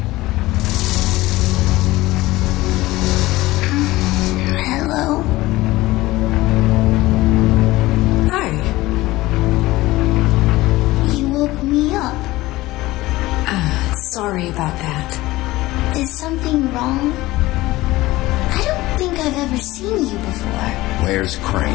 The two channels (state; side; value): quieter; right; 18.4 dB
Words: Hello? Hi. You woke me up. Sorry about that. Is something wrong? I don't think I've ever seen you before. Where's